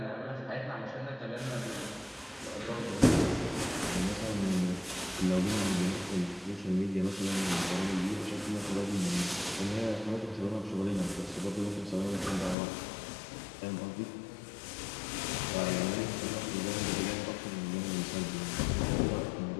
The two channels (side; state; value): right; drops out; at 12.6 s